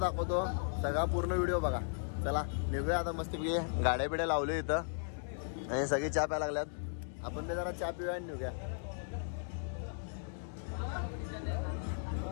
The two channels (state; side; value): silent; right; digital silence